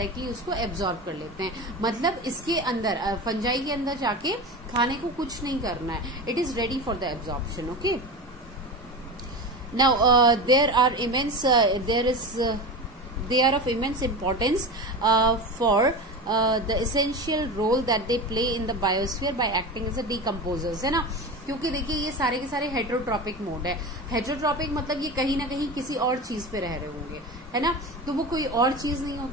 उसको एब्जॉर्ब कर लेते हैं. मतलब इसके अंदर फंजाई के अंदर जाके खाने को कुछ नहीं करना है, it is ready for the absorption. Okay. Now there are immense they are of immense importance for the essential role that they play in the biosphere by acting as a decomposers, है ना. क्योंकि देखिए ये सारे के सारे heterotrophic mode है. Heterotrophic मतलब ये कहीं ना कहीं किसी और चीज पे रह रहे होंगे, है ना. तो वो कोई और चीज नहीं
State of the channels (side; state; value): both; normal; correlation 0.26